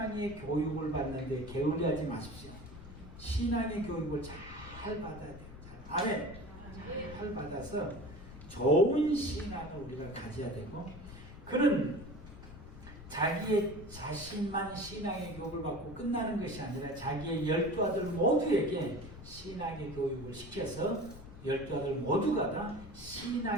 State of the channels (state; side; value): noise; left; rumble, 14 dB below the sound